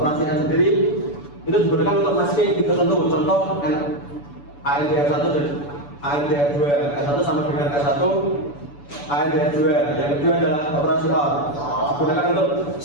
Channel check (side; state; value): right; late; 7.0 ms